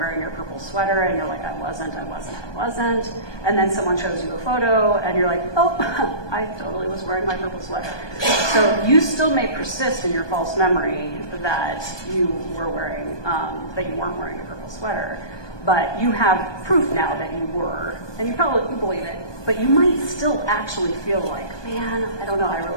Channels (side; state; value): right; late; 1.2 ms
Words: your purple sweater and you're like, I wasn't. And then someone shows you a photo and you're like, oh, I totally was wearing my purple sweater. So you still may persist in your false memory that you were wearing, that you weren't wearing a purple sweater, but you have proof now that you were, and you believe it, but you might still actually feel like, man, I don't know, I